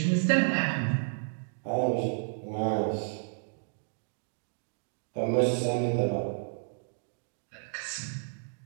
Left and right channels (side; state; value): left; silent; digital silence